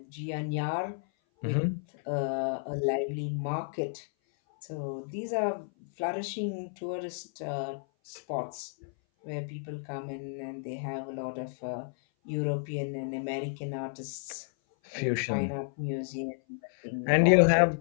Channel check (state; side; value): silent; right; 56 dB below the other